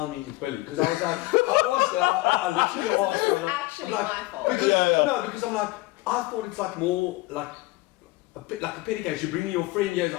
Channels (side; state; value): right; quieter; 20.5 dB